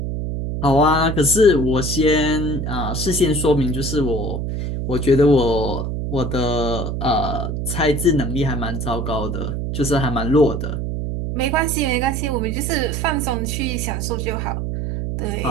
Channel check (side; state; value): right; noise; hum, 3 dB below the sound